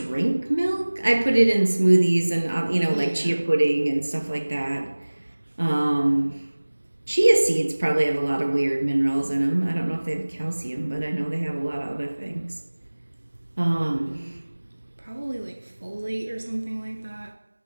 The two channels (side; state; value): both; inverted; correlation -1.00